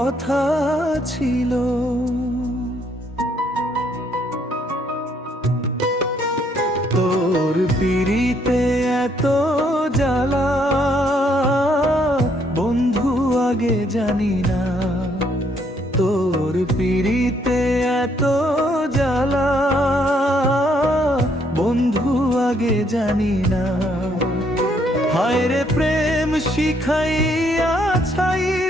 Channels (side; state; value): both; normal; correlation 0.70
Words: ছিল? তোর পিড়িতে এত জ্বালা, বন্ধু আগে জানি না। তোর পিড়িতে এত জ্বালা, বন্ধু আগে জানি না। হায় রে প্রেম শিখাইয়া